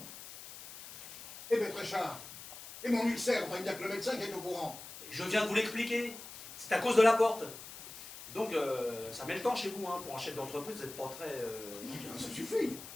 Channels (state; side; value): noise; left; hiss, 13 dB below the sound